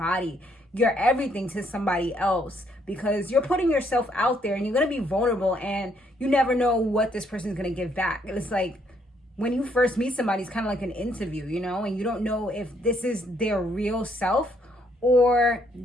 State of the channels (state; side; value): normal; both; correlation 0.70